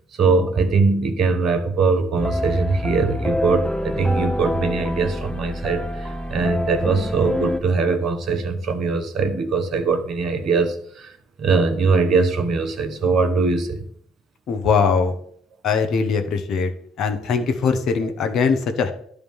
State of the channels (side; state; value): both; normal; correlation 0.64